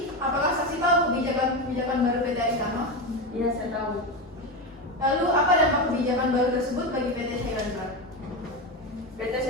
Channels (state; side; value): normal; both; correlation 0.16